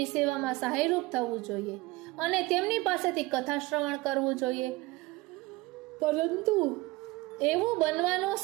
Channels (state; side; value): quieter; left; 21.4 dB